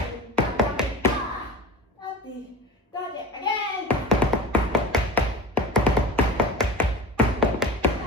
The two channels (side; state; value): both; normal; correlation 0.34